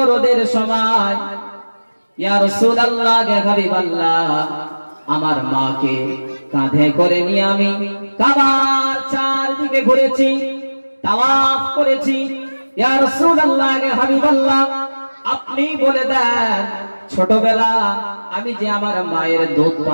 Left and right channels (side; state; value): both; inverted; correlation -1.00